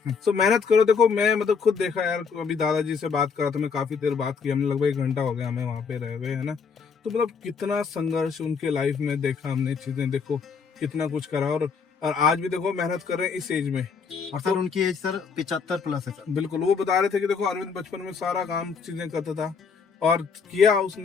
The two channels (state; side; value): quieter; right; 5.7 dB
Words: तो मेहनत करो। देखो मैं मतलब खुद देखा यार, अभी दादाजी से बात करा था मैं, काफी देर बात की हमने, लगभग 1 घंटा हो गया हमें वहाँ पे रहे हुए, है ना। तो मतलब कितना संघर्ष उनके लाइफ में देखा हमने, चीजें देखो कितना कुछ करा, और आज भी देखो मेहनत कर रहे हैं इस एज में। और सर उनकी एज सर 75 प्लस है सर। बिल्कुल। वो बता रहे थे कि देखो अरविंद बचपन में सारा काम चीजें करता था और किया,